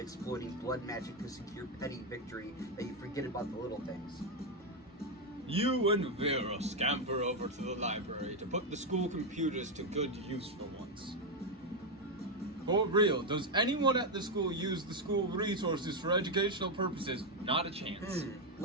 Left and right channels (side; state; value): both; normal; correlation 0.05